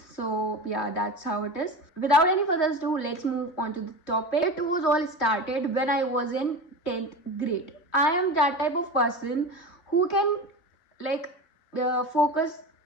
So yeah, that's how it is. Without any further ado, let's move on to the topic. It was all started when I was in 10th grade. I am that type of person who can like focus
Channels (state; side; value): late; right; 3.2 ms